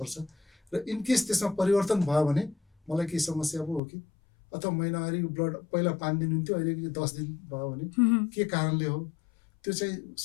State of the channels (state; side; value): drops out; right; at 3.8 s